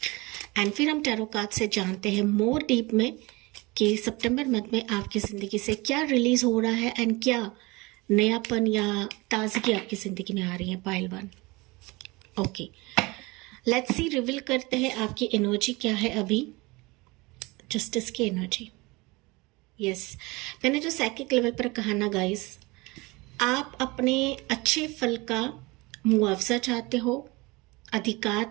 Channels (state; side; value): quieter; left; 24.0 dB